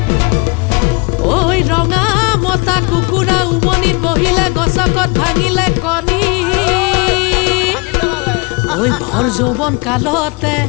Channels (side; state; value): right; quieter; 29.6 dB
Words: ওই ৰঙা মতা কুকুৰা উমনিত বহিলে গছকত ভাঙিলে কণী ওই ভৰ যৌৱন কালতে